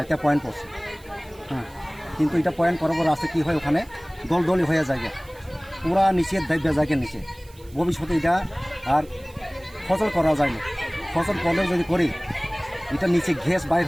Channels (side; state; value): right; noise; hiss, 26 dB below the sound